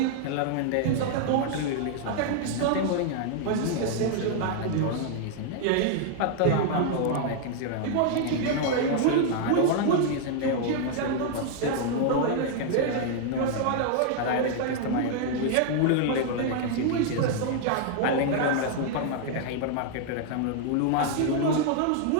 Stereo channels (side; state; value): both; different; correlation 0.00